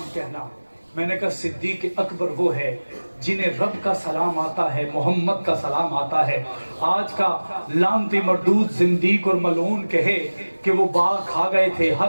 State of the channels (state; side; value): inverted; both; correlation -1.00